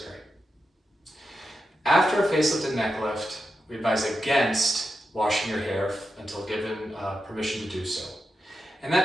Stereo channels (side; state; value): both; normal; correlation 0.88